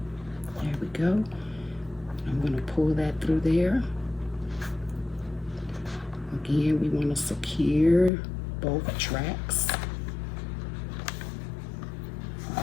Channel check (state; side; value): drops out; right; at 8.1 s